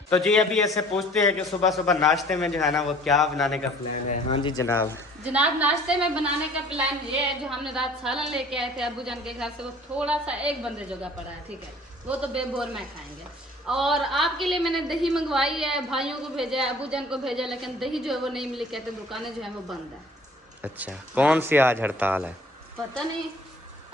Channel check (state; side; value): normal; both; correlation 0.51